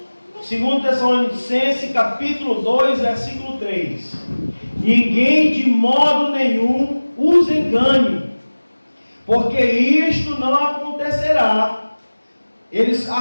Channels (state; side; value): inverted; both; correlation -1.00